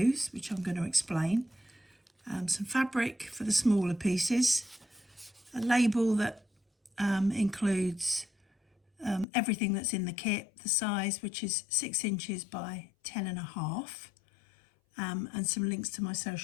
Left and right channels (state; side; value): drops out; right; at 9.2 s